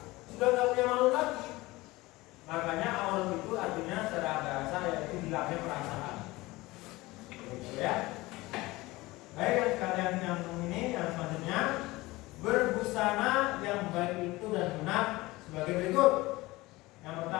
sudah nggak punya malu lagi. Makanya aurat itu artinya secara bahasa yaitu hilangnya perasaan. Gitu ya. Baik, kalian yang ini yang selanjutnya, berbusana yang baik itu dan benar sebagai berikut. Yang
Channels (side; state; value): right; quieter; 20.4 dB